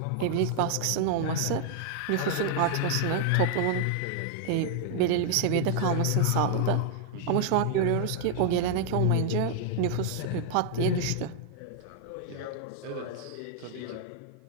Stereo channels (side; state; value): both; different; correlation 0.00